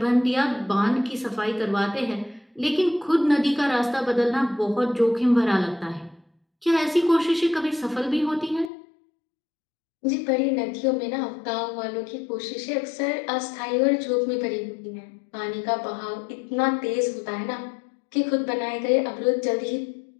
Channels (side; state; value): right; drops out; at 8.7 s